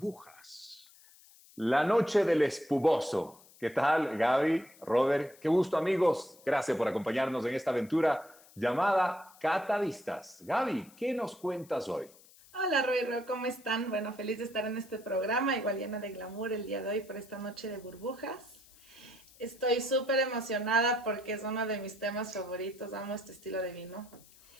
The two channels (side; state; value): left; noise; hiss, 25 dB below the sound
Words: La noche del espumoso. ¿Qué tal, Gaby, Robert? Qué gusto, amigos. Gracias por acompañarnos en esta aventura llamada Catadistas. Gaby, ¿qué nos cuentas hoy? Hola, Roy, ¿cómo están? Bueno, feliz de estar en este programa, igual llena de glamour el día de hoy por esta noche de burbujas. Estoy súper emocionada porque es uno de mis temas favoritos, amo este estilo de vino.